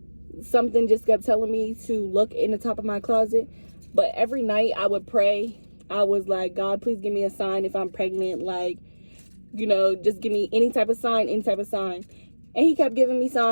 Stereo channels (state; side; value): inverted; both; correlation -1.00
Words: something just kept telling me to look in the top of my closet. But every night I would pray. I was like, God, please give me a sign if I'm pregnant. Like, you know, just give me any type of sign. And he kept giving me